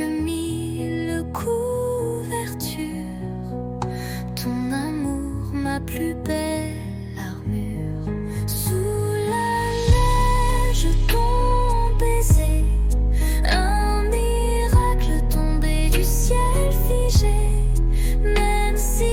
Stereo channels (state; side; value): identical; both; correlation 1.00